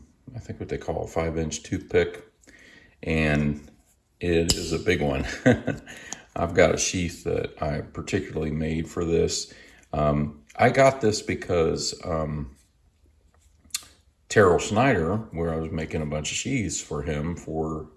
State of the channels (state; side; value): identical; both; correlation 1.00